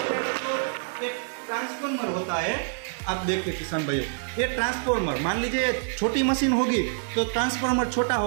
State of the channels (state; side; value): silent; left; 61 dB below the other